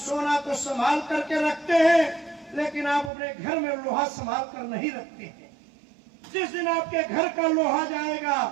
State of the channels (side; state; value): left; drops out; at 3.1 s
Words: तो संभाल करके रखते हैं, लेकिन आप अपने घर में लोहा संभाल कर नहीं रखते हैं। जिस दिन आपके घर का लोहा जाएगा